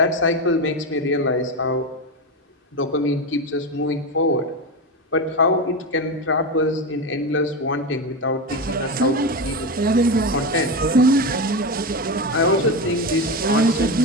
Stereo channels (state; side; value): normal; both; correlation 0.17